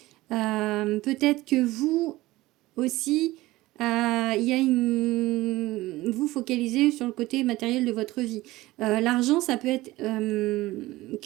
peut-être que vous aussi, il y a vous focalisez sur le côté matériel de votre vie. L'argent, ça peut être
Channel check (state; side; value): quieter; left; 18.3 dB